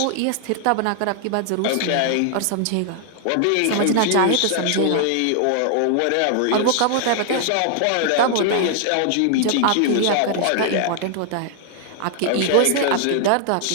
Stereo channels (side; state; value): both; different; correlation 0.00